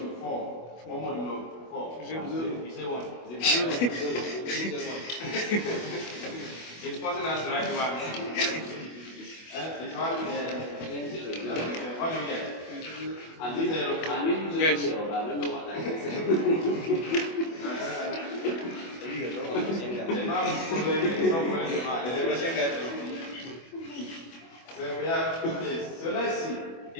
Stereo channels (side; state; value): right; late; 24 ms